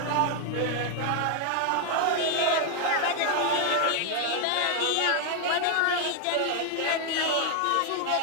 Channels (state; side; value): different; both; correlation 0.00